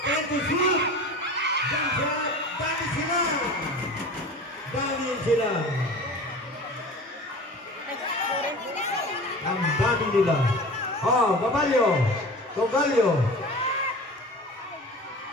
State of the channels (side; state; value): both; normal; correlation 0.37